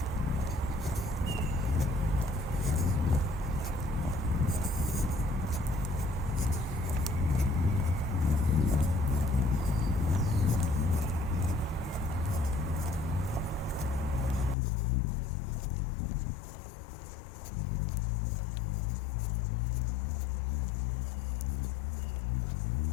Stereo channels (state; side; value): drops out; right; at 14.6 s